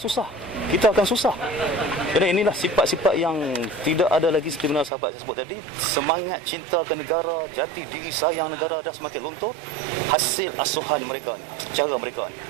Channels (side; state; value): left; drops out; at 4.9 s